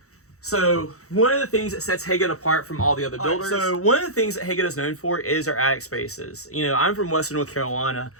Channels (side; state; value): right; late; 0.65 ms